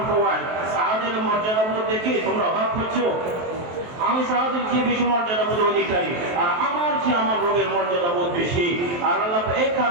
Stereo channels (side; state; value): left; late; 23 ms